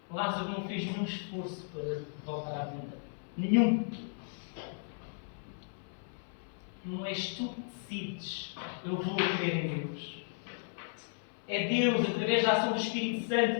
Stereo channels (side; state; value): right; silent; 55 dB below the other